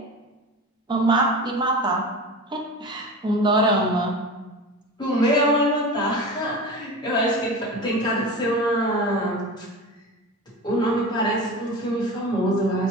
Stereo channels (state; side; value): normal; both; correlation 0.31